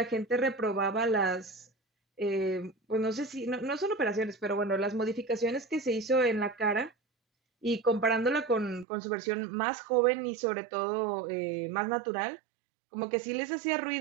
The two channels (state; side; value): drops out; left; at 8.8 s